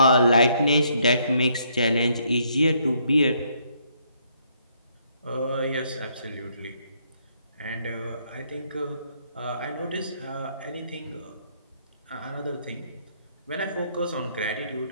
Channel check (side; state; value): both; inverted; correlation -0.70